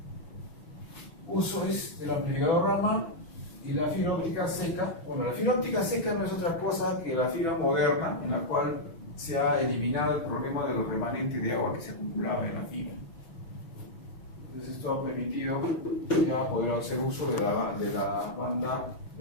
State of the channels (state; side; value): late; right; 6.1 ms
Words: Uso es del amplificador Raman y la fibra óptica seca. Bueno, la fibra óptica seca no es otra cosa que la fibra moderna, en la cual se ha eliminado el problema de los remanentes de agua que se acumulaba en la fibra. Entonces esto ha permitido ya poder hacer uso de la banda